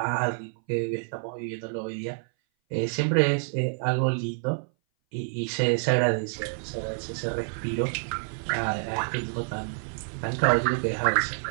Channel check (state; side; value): silent; left; 58 dB below the other